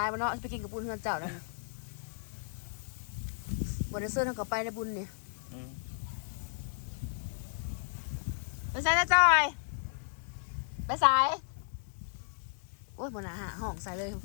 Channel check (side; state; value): right; silent; 55 dB below the other